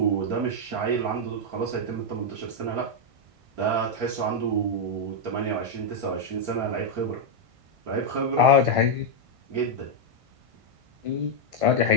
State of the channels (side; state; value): left; late; 1.6 ms